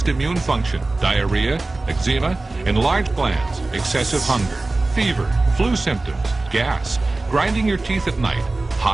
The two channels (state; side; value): quieter; left; 3.1 dB